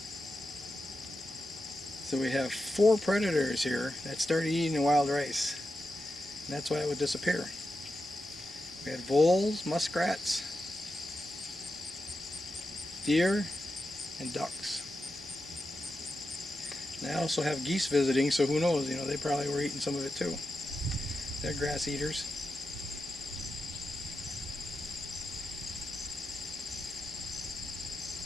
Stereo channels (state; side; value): normal; both; correlation 0.89